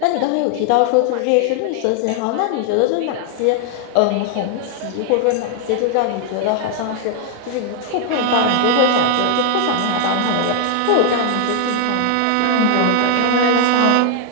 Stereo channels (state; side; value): different; both; correlation 0.00